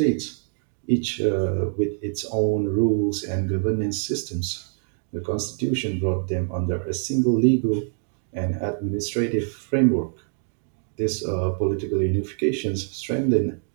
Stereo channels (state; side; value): silent; left; 61 dB below the other